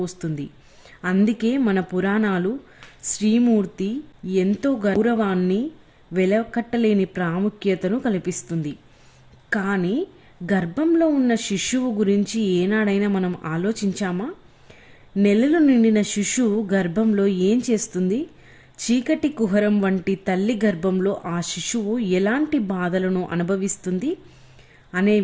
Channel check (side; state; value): both; identical; correlation 1.00